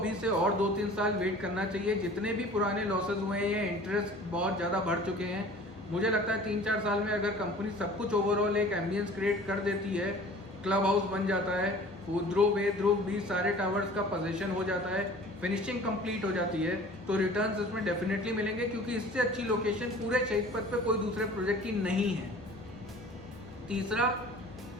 से और 2-3 साल वेट करना चाहिए। जितने भी पुराने लॉसेज हुए हैं, ये इंटरेस्ट बहुत ज़्यादा बढ़ चुके हैं। मुझे लगता है 3-4 साल में अगर कंपनी सब कुछ ओवरऑल एक एम्बियंस क्रिएट कर देती है, क्लब हाउस बन जाता है, ध्रुव ए, ध्रुव बी, सारे टावर्स का पोजीशन हो जाता है, फिनिशिंग कंप्लीट हो जाती है, तो रिटर्न्स इसमें डेफिनेटली मिलेंगे, क्योंकि इससे अच्छी लोकेशन पूरे शहीद पथ पे कोई दूसरे प्रोजेक्ट की नहीं है। तीसरा,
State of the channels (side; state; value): both; normal; correlation 0.46